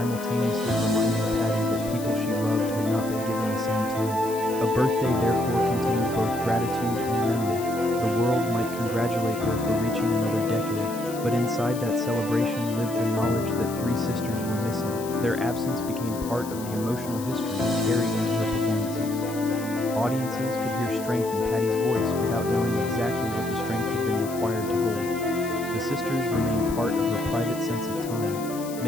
reminding Patti that people she loved had not been given the same time. A birthday therefore contained both gratitude and memory. The world might congratulate her for reaching another decade, but inside that celebration lived the knowledge that three sisters were missing. Their absence became part of the emotional history carried into her performances. Audiences could hear strength in Patti's voice without knowing exactly what the strength had been required to hold. The sisters remained part of her private sense of time,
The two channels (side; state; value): left; noise; hiss, 14 dB below the sound